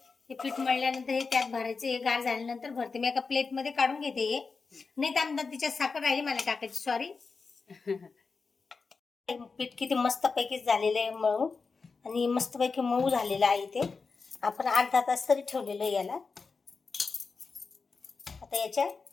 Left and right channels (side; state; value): right; quieter; 4.6 dB